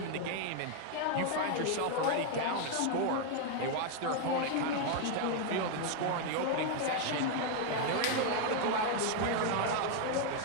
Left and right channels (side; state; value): both; different; correlation 0.00